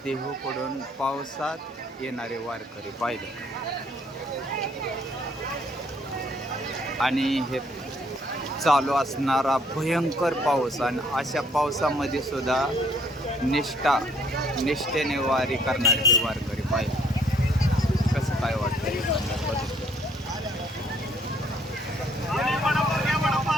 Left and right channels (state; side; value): normal; both; correlation 0.64